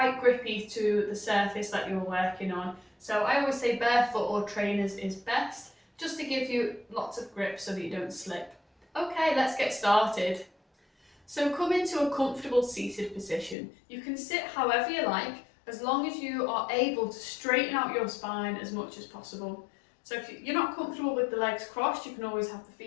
grippy to the surface that you're working on. So I always say barefoot or trainers is best, just to give you lots of grip so that you don't slip. Okay, let's get started. So come into a comfortable seated position. You can sit however you like, as long as you are able to straighten out your spine as much as possible. So if you're not comfortable with the legs crossed, you can always have the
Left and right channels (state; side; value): drops out; right; at 13.6 s